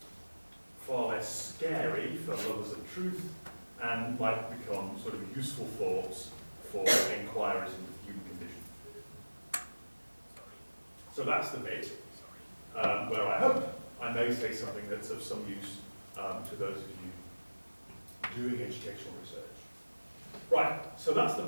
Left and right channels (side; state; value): both; inverted; correlation -1.00